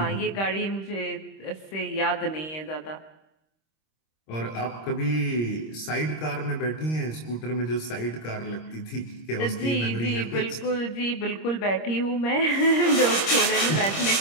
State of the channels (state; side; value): late; right; 26 ms